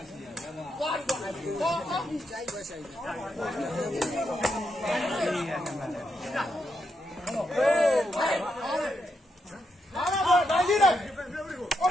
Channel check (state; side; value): normal; both; correlation 0.81